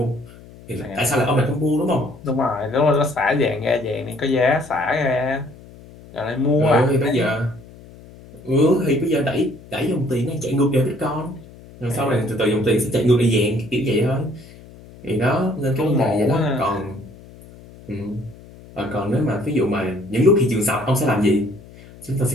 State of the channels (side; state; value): left; noise; hum, 20 dB below the sound